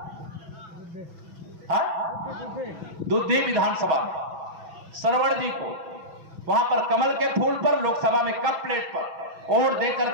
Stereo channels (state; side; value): late; left; 6.1 ms